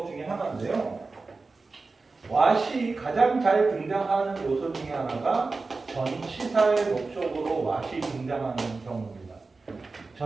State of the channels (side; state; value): left; quieter; 3.9 dB